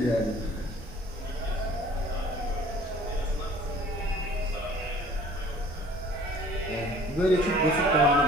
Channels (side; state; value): both; normal; correlation 0.51